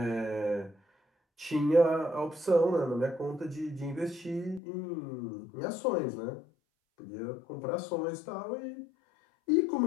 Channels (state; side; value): drops out; right; at 4.6 s